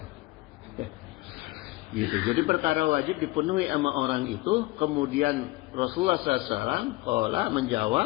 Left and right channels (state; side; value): quieter; right; 20.5 dB